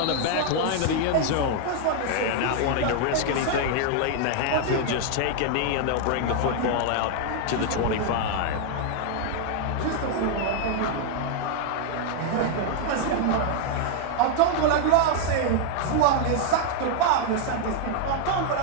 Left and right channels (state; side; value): different; both; correlation 0.00